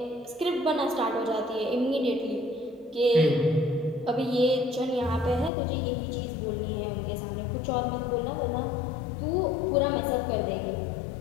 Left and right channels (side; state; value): right; drops out; at 5.5 s